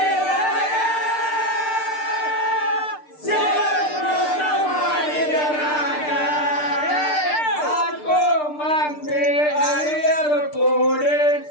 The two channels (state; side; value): late; right; 6.7 ms